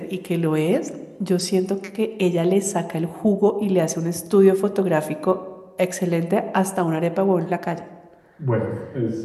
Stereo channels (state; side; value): identical; both; correlation 1.00